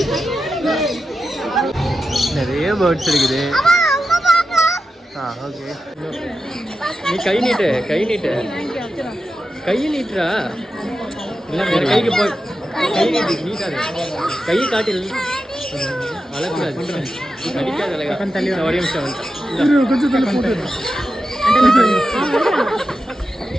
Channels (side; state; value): both; normal; correlation 0.90